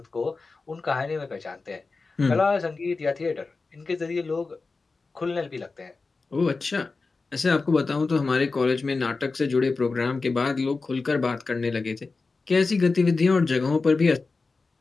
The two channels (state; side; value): quieter; right; 4.0 dB